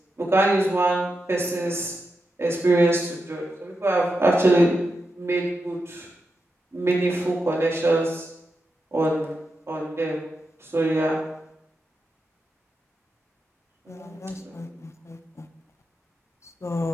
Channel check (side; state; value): both; normal; correlation 0.88